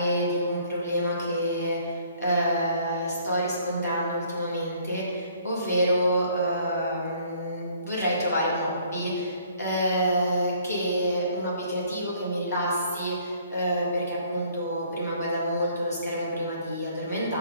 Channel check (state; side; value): inverted; both; correlation -0.60